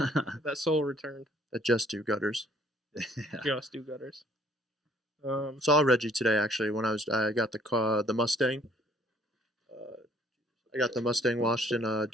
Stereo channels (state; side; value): normal; both; correlation 0.60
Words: That soul returned. That just do gutters. Yeah. Just do gutters. Saw Reggie today actually when I got the Mustang. I got the Mustang washed in